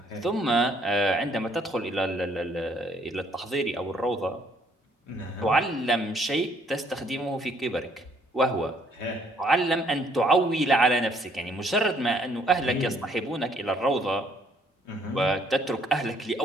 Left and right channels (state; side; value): normal; both; correlation 0.65